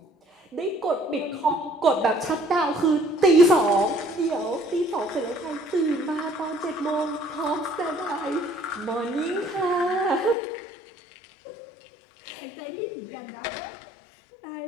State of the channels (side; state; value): right; drops out; at 10.4 s